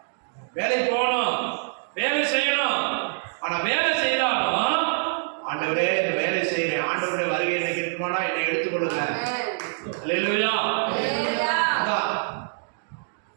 வேலைக்கு போகணும், வேலை செய்யணும். ஆனா வேலை செய்யறாலும் ஆண்டவரே இந்த வேலை செய்யறேன், ஆண்டவருடைய வருகை எனக்கு இருக்குமானா என்னை எடுத்துக்கொள்ளுங்க. அல்லேலூயா. அதான்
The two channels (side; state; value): left; silent; digital silence